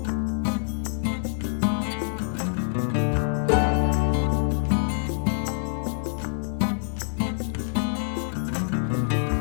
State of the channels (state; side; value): silent; right; 61 dB below the other